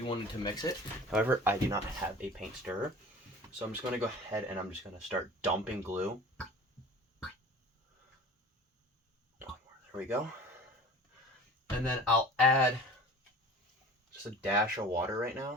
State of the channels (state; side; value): normal; both; correlation 0.41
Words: wanted to mix it. However, I do not have a paint stirrer. So I'm just going to go ahead and I'm just going to start dumping glue. There we go. And then I'll add just a dash of water right